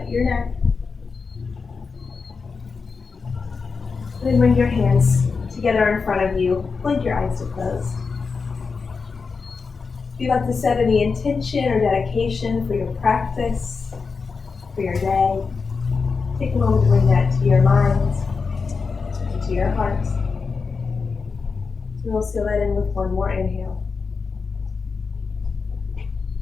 your neck. Then bring your hands together in front of you. Blink your eyes to close. If you'd like to set any intention or dedication for your practice, for your day, take a moment to bring that to your mind and to your heart. We'll seal that in with one more inhale.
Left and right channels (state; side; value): quieter; right; 4.9 dB